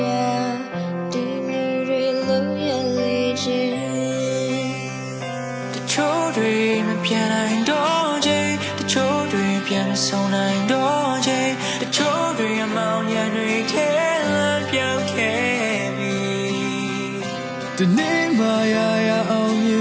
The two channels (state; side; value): identical; both; correlation 1.00